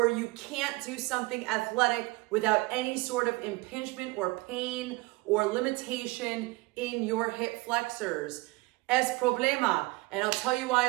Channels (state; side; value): quieter; left; 23.3 dB